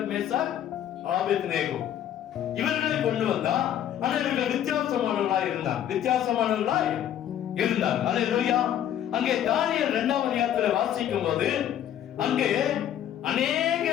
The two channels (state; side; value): quieter; right; 10.6 dB